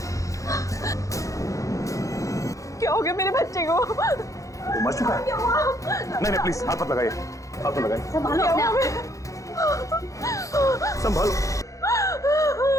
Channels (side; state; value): right; late; 0.16 ms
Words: क्या हो गया मेरे बच्चे को? वो मर चुका है? नहीं प्लीज हाथ मत लगाइए, हाथ मत लगाइए। संभालो अपने आप। संभालो।